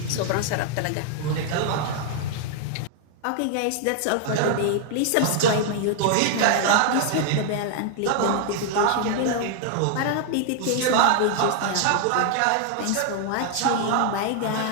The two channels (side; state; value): both; different; correlation 0.00